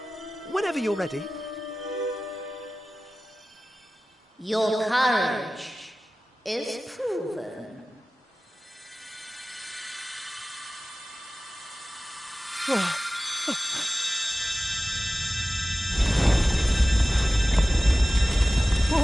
Whenever you're ready. Your courage is proven.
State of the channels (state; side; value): normal; both; correlation 0.96